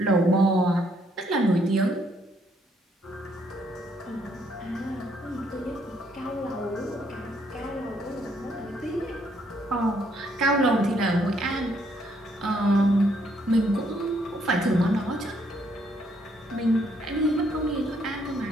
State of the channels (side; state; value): both; normal; correlation 0.70